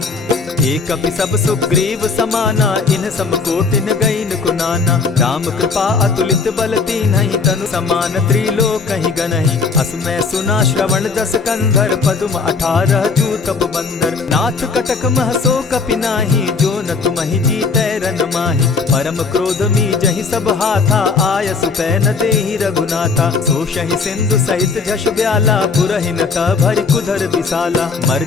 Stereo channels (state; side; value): quieter; right; 4.7 dB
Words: एक कपि सब सुग्रीव समाना, इन सम कोटिन गईन कुनाना। राम कृपा अतुलित बल तीन्हि, तनु समान त्रिलोक ही गनहि। अस मैं सुना श्रवण दस कंधर, पदुम 18 जूतब बंदर। नाथ कटक महसो कपि नाही, जो न तुमहि जीतै रन माहि। परम क्रोध मी जहि सब हाथा, आयसु पै न देहि रघुनाथा। सोषहि सिंधु सहित झष ब्याला, पुरहिन त भरि कुधर विशाला।